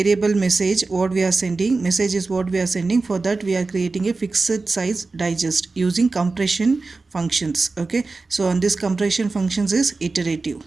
message what we are sending, message is what we are sending, for that we are creating a fixed size digest using compression functions. Okay, so on this compression functions is iterative.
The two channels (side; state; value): left; quieter; 3.8 dB